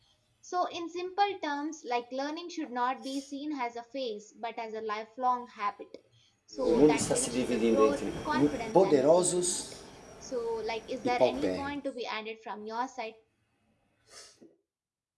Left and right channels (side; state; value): both; identical; correlation 1.00